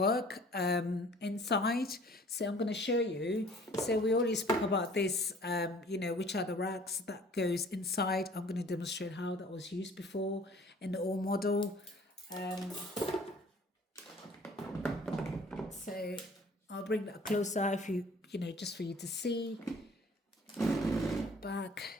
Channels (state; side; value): normal; both; correlation 0.52